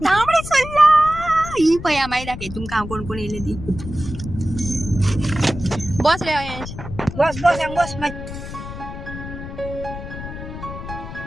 तांबडे सुर्ला ही पळया मागीर दाखय तुमकां हांव कोण कोण येयले ती बस रे अयंश बस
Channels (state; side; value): noise; left; rumble, 10 dB below the sound